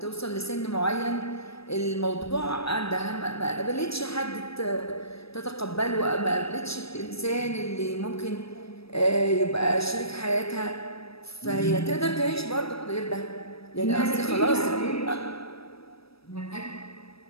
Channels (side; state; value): right; late; 0.77 ms